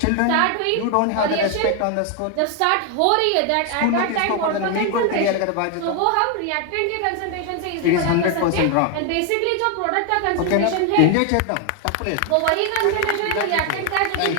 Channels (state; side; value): different; both; correlation 0.01